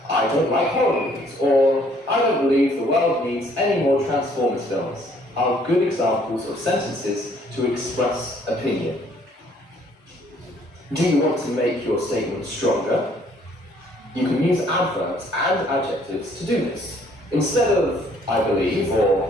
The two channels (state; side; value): normal; both; correlation 0.62